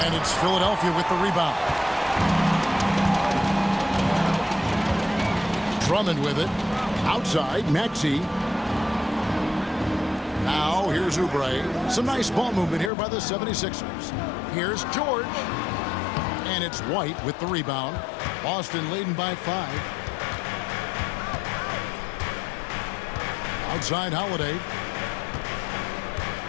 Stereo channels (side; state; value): right; drops out; at 12.9 s